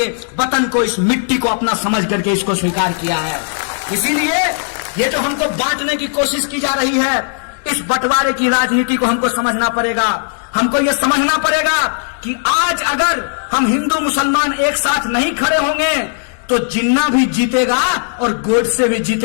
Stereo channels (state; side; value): silent; right; digital silence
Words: वतन को, इस मिट्टी को अपना समझ करके इसको स्वीकार किया है। इसीलिए ये जो हमको बांटने की कोशिश की जा रही है, इस बंटवारे की राजनीति को हमको समझना पड़ेगा। हमको ये समझना पड़ेगा कि आज अगर हम हिंदू मुसलमान एक साथ नहीं खड़े होंगे तो जिन्ना भी जीतेगा और गोडसे भी